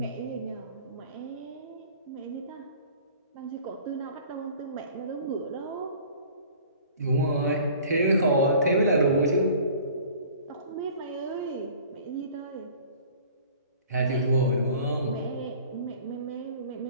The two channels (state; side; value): inverted; both; correlation -0.47